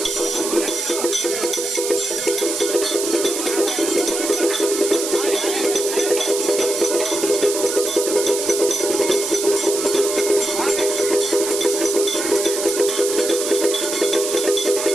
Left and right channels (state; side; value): noise; right; hiss, 4 dB below the sound